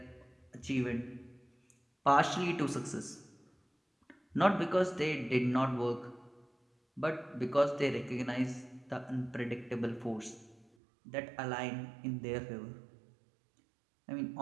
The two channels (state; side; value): drops out; left; at 10.7 s